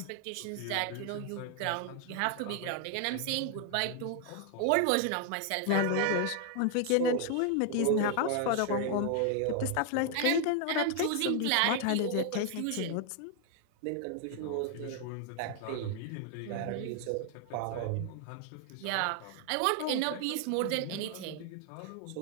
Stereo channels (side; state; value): both; different; correlation 0.00